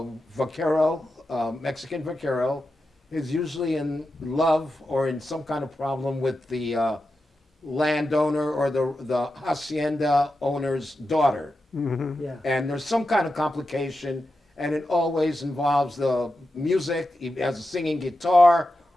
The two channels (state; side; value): normal; both; correlation 0.90